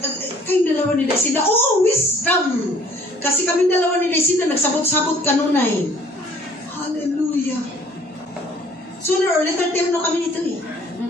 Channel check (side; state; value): both; normal; correlation 0.57